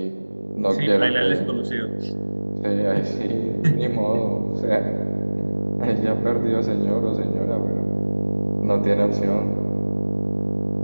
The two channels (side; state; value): both; inverted; correlation -1.00